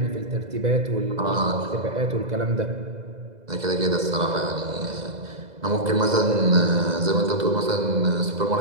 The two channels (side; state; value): left; late; 2.0 ms